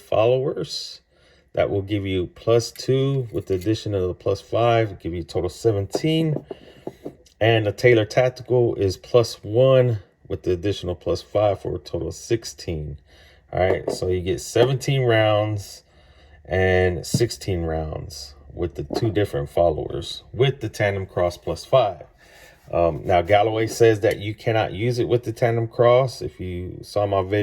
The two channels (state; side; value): identical; both; correlation 1.00